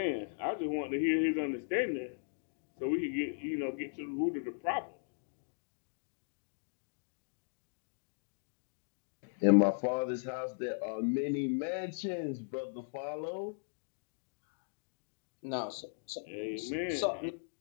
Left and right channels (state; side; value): silent; right; digital silence